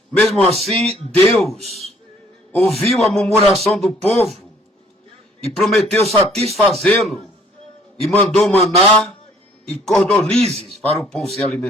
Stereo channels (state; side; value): normal; both; correlation 0.59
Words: Mesmo assim, Deus ouviu a murmuração do povo e prometeu satisfazê-lo e mandou maná e cordonizes para o povo se